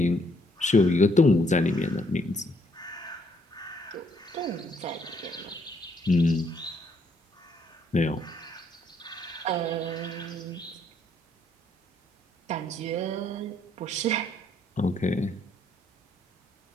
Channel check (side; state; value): both; normal; correlation 0.70